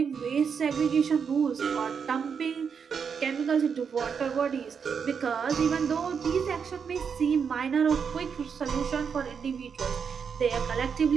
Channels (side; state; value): left; quieter; 6.5 dB